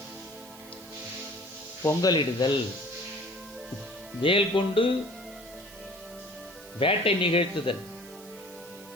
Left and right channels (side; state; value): right; noise; hiss, 20 dB below the sound